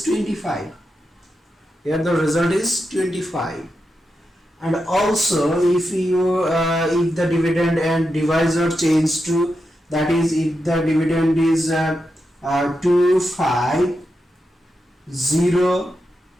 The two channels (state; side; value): normal; both; correlation 0.87